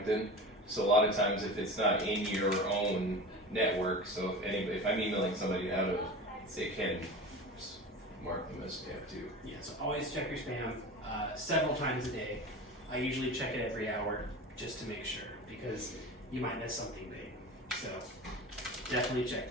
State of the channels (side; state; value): both; normal; correlation 0.32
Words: So a lot of times if it's not in your own network, so if I'm emailing somebody out of, say, Canton, just mark them as spam too. Yeah, so always check your spam several times a day. I usually check it every hour just to make sure because you might miss something big. So definitely check